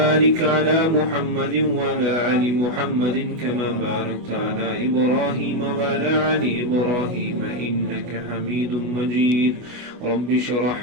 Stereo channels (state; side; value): late; left; 25 ms